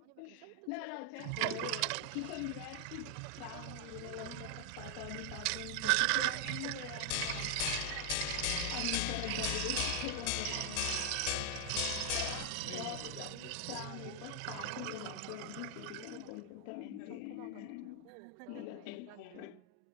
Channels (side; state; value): both; different; correlation 0.00